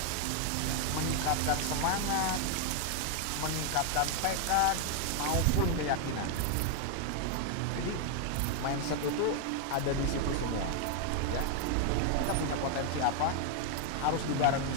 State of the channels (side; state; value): both; different; correlation 0.00